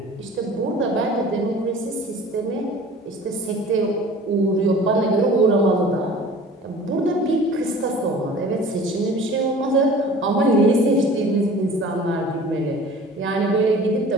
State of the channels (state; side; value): normal; both; correlation 0.44